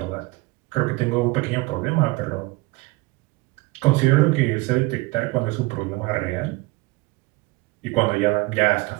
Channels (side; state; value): left; quieter; 22.4 dB